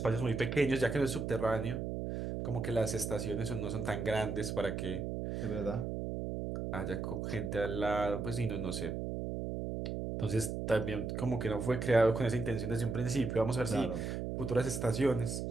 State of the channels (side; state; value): right; noise; hum, 3 dB below the sound